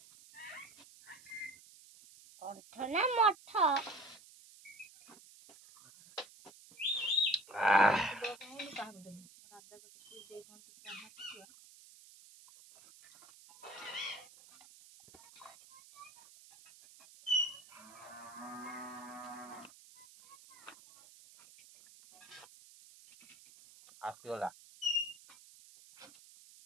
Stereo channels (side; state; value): right; noise; hiss, 21 dB below the sound